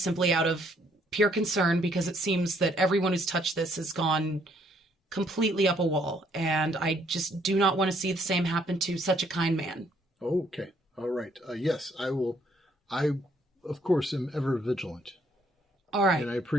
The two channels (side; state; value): both; normal; correlation 0.67